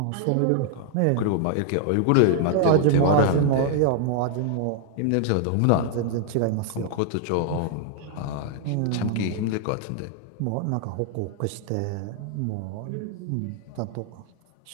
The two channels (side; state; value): both; different; correlation 0.00